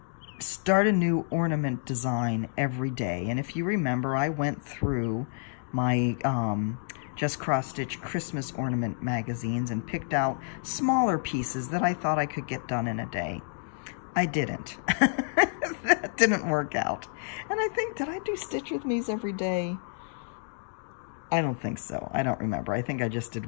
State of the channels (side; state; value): right; silent; digital silence